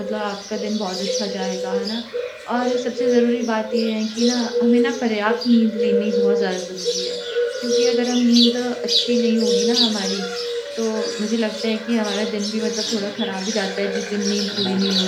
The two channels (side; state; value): both; identical; correlation 1.00